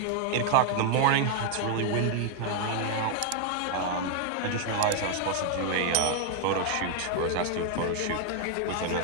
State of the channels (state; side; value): different; both; correlation 0.00